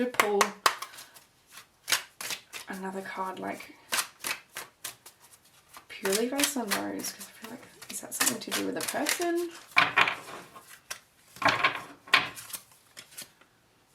pull another card, like, purely based on those, because I feel like, is that something to do with a person?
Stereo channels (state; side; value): identical; both; correlation 1.00